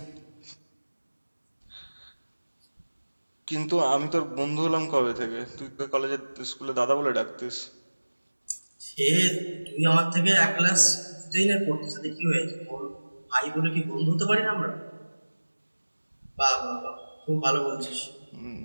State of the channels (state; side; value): inverted; both; correlation -1.00